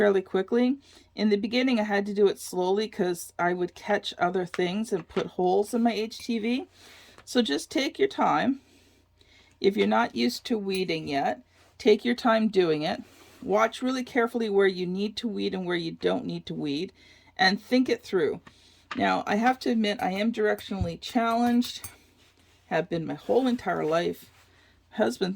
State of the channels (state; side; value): identical; both; correlation 1.00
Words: quickly, in the beginning I had to do it slowly because I would catch other things and put holes in my HTV. So just take your time. If you're not used to weeding yet, take your time doing it. Watch really carefully where you need to weed and where you don't need to weed, and think it through. Now, I have to admit, I am directionally challenged, have been my whole entire life. My husband